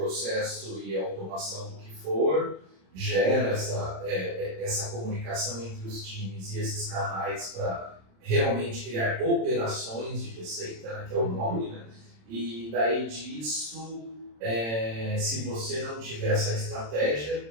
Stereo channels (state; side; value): late; left; 26 ms